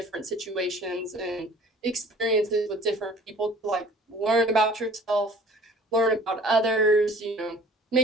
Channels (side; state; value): both; normal; correlation 0.50